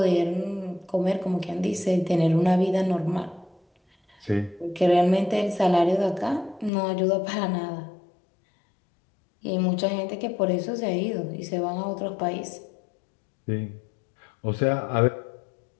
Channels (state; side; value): drops out; right; at 6.7 s